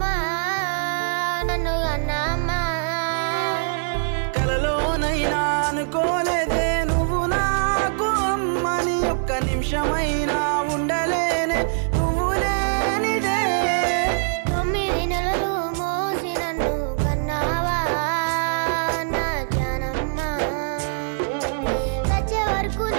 నన్ను కన్నామ్మా. కలలోనైనా అనుకోలేదే నువ్వు నాకు అమ్మని, ఒక్క నిమిషమైనా ఉండలేనే నువ్వు లేనిదే. 9 నెలలు మోసి నన్ను కన్నావా నా జానమ్మ, చచ్చే వరకు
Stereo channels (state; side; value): silent; left; digital silence